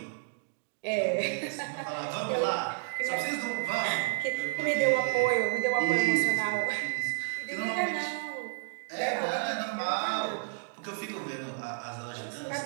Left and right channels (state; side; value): silent; left; digital silence